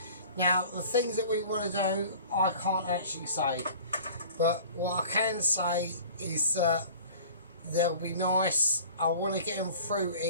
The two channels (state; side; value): inverted; both; correlation -0.45